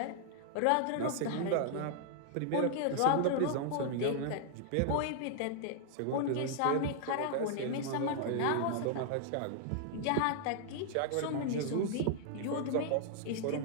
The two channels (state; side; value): different; both; correlation 0.00